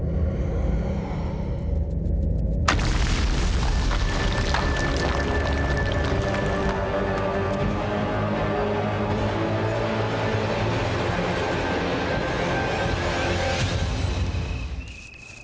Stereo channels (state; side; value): identical; both; correlation 1.00